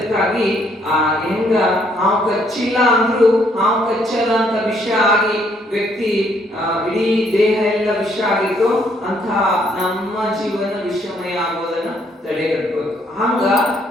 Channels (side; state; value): both; normal; correlation 0.68